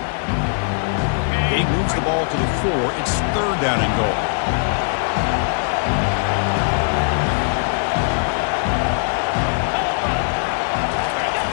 He moves the ball to the 4. It's third down and goal.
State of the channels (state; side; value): silent; right; digital silence